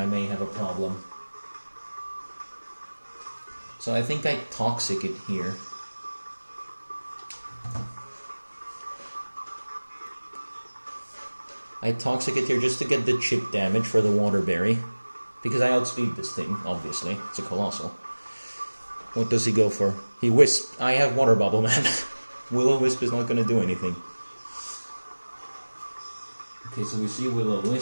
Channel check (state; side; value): inverted; both; correlation -1.00